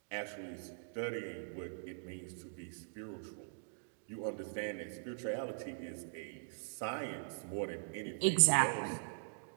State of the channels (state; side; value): silent; left; digital silence